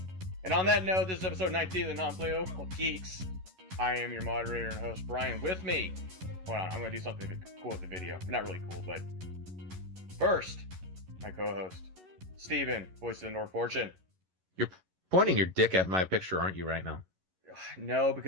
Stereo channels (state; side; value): late; left; 11 ms